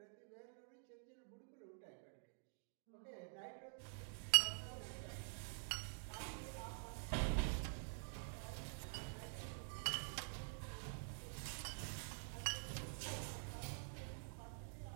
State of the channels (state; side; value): silent; left; digital silence